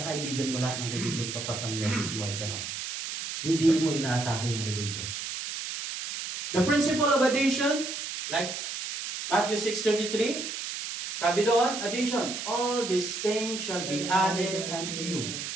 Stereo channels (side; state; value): right; noise; hiss, 6 dB below the sound